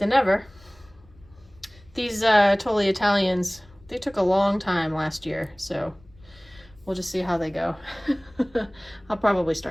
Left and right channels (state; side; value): noise; left; rumble, 26 dB below the sound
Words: never. These Totally Italians, they took a long time last year, so we'll just see how they go. I'll probably